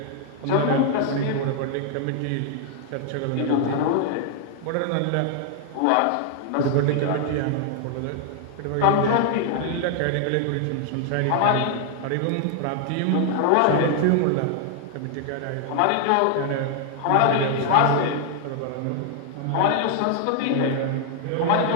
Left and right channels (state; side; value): different; both; correlation 0.00